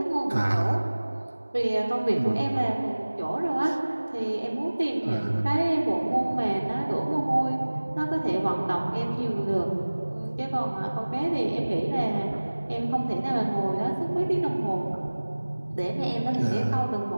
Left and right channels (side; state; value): both; inverted; correlation -1.00